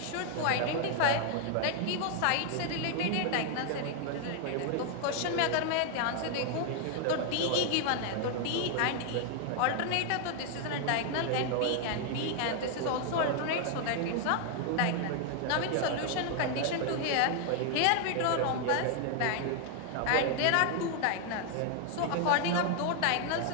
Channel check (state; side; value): different; both; correlation 0.00